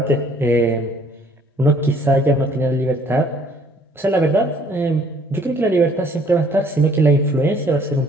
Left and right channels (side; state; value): both; normal; correlation 0.60